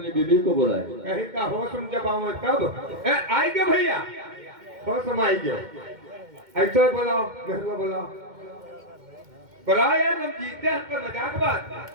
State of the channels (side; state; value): left; late; 2.1 ms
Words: बीबी को बुलाए। कहीं का होश में जब आऊँ तब आएंगे भैया, होश में आएंगे। ऐसा बोलाओ मेहरुआ बोलाओ, बुलाओ यार हम जीते हैं। हमको मजाक बात।